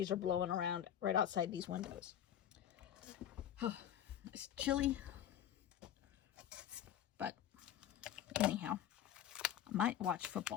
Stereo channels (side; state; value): right; quieter; 10.6 dB